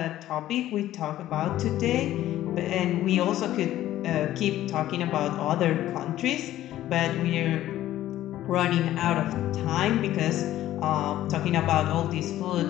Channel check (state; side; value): quieter; right; 13.7 dB